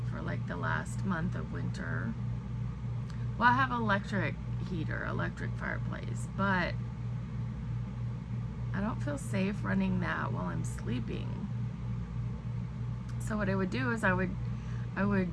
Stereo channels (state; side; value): identical; both; correlation 1.00